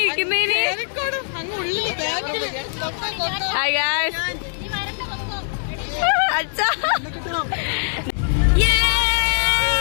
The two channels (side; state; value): right; silent; digital silence